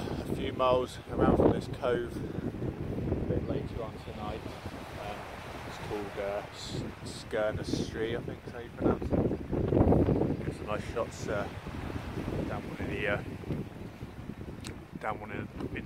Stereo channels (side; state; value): both; identical; correlation 1.00